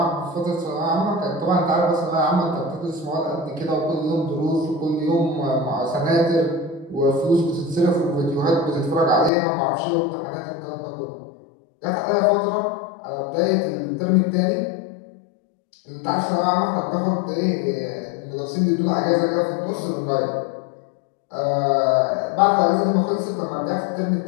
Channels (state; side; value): drops out; right; at 9.3 s